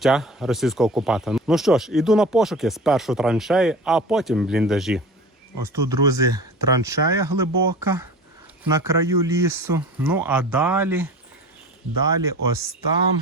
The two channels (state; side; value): normal; both; correlation 0.37